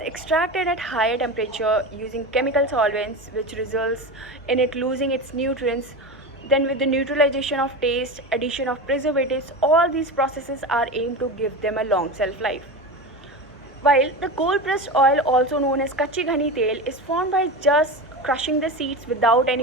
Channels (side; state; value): both; normal; correlation 0.24